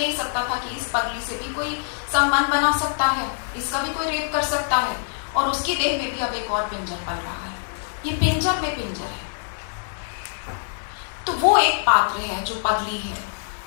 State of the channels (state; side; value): silent; right; digital silence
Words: सकता था कि इस पगली से भी कोई संबंध बना सकता है, इसका भी कोई रेप कर सकता है, और उसकी देह में भी अब एक और पिंजर पल रहा है। ये पिंजर में पिंजर है। तो वो एक पात्र है जो पगली है,